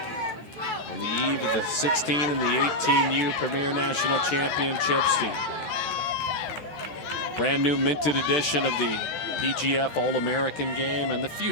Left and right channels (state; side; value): late; right; 13 ms